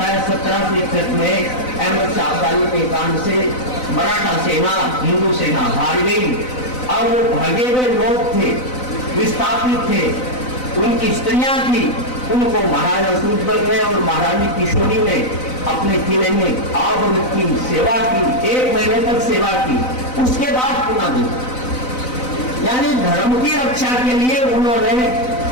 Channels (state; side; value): late; right; 4.0 ms